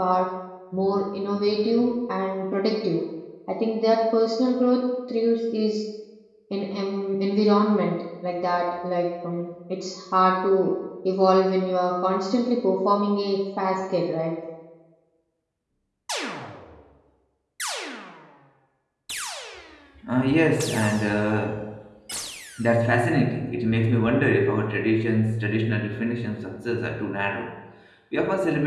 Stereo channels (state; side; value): identical; both; correlation 1.00